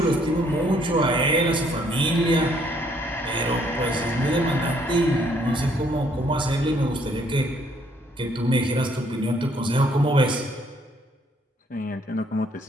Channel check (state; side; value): normal; both; correlation 0.66